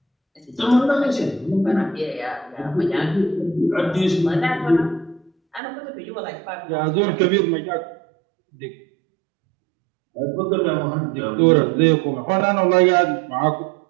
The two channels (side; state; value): left; drops out; at 5.6 s